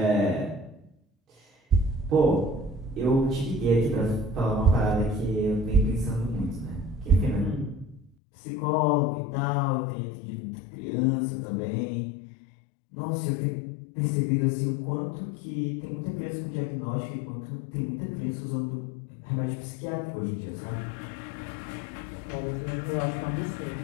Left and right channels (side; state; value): right; drops out; at 8.1 s